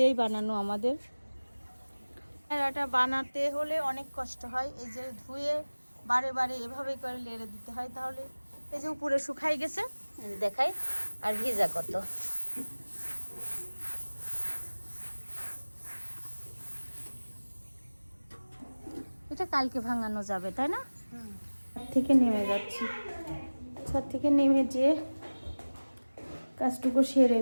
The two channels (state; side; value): inverted; both; correlation -1.00